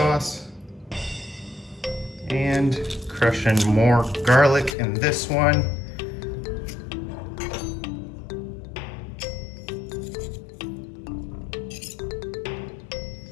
and crush in more garlic in this one.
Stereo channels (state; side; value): drops out; right; at 4.8 s